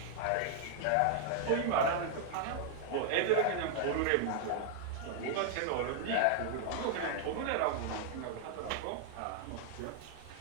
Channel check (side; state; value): both; different; correlation -0.01